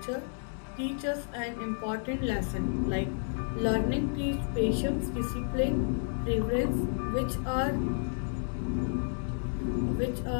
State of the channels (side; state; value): right; silent; digital silence